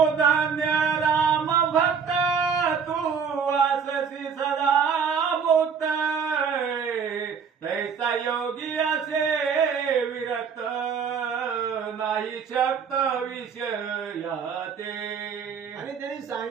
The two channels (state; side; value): quieter; left; 6.5 dB